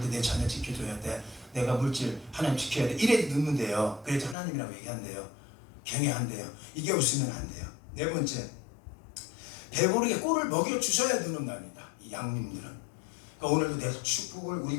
내 자녀 지켜줘야 돼. 내가 물질 하나님 지켜야 돼. 이래도 누는데요. 그래서 하나님이라고 얘기한대요. 경외한대요. 이게 없으면 안 돼요. 네 번째, 배부르게 꼴을 먹여주셔야 누는답니다. 이 양님들은. 그러니까 오늘도 내 축복을 우리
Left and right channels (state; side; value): drops out; right; at 4.4 s